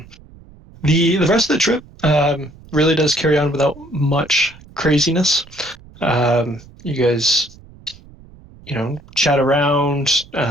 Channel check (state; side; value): noise; right; rumble, 23 dB below the sound